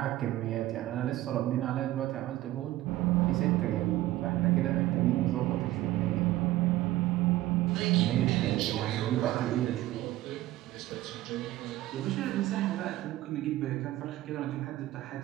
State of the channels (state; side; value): quieter; left; 15.8 dB